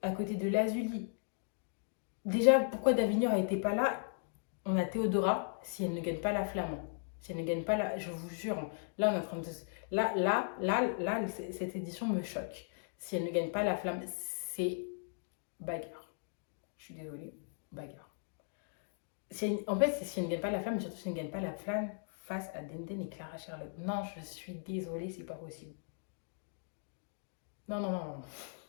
à côté de Lazuli. Déjà, pourquoi Davignon n'était pas là? On a Théodora, si elle ne gagne pas la flamme. Si elle ne gagne pas la... Je vous jure, là, on est en train de... Là, cette édition me choque. Si elle ne gagne pas la flamme, c'est bagarre. Je suis désolée, bagarre. En fait, c'est si elle ne gagne pas la flamme, mais surtout si elle ne gagne pas la flamme face à Denden et Clara Charlotte. Non, je suis désolée, c'est pas possible. Non, non, non, non.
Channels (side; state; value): right; silent; digital silence